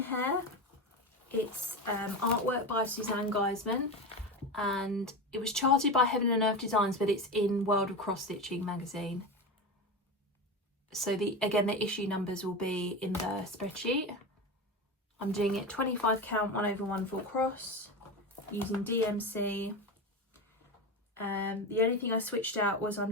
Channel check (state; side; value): normal; both; correlation 0.22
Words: It's artwork by Suzanne Geisman, and it was charted by Heaven and Earth Designs, but it's in World of Cross Stitching magazine. So again, the issue numbers will be in the spreadsheet. I'm doing it 25 count 1/1 full cross using DMC. The only thing I switched out was I'm